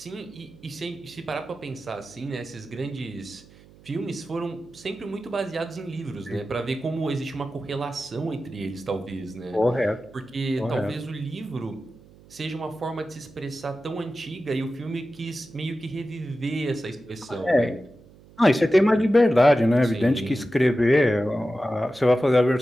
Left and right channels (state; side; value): noise; right; hum, 24 dB below the sound